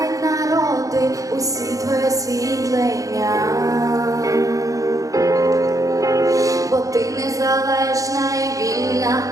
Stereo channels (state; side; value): late; left; 0.16 ms